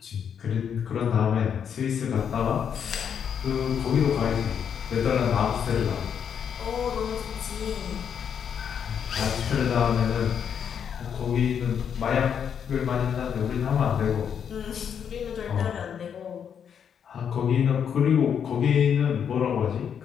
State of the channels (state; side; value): quieter; right; 7.8 dB